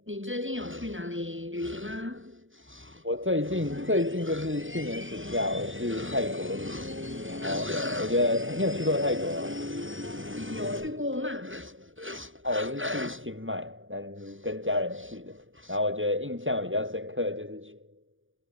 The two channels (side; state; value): left; late; 0.57 ms